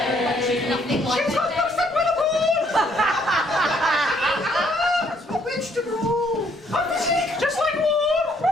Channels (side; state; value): both; normal; correlation 0.67